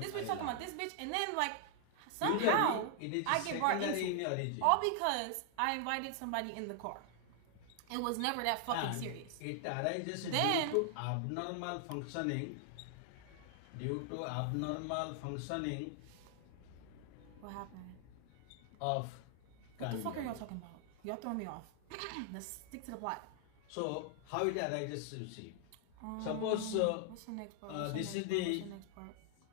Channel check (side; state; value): both; different; correlation 0.00